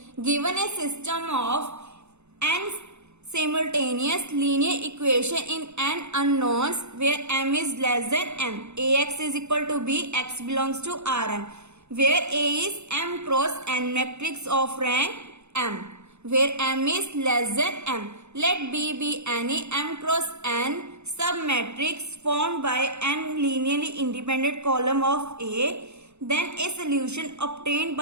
Given a system of n simultaneous linear equation in n unknowns where m is less than m, ax is equal to b, x belongs to Rn, where A is m cross n matrix of rank m, where m is less than m. Let B be any m cross n submatrix formed by n linearly independent column of A. Then a solution obtained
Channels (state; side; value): late; left; 0.81 ms